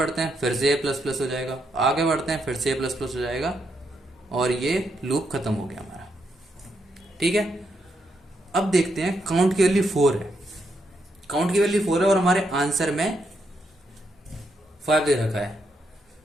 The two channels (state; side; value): normal; both; correlation 0.79